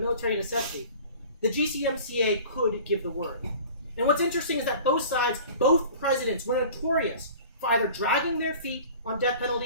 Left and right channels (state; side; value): inverted; both; correlation -0.43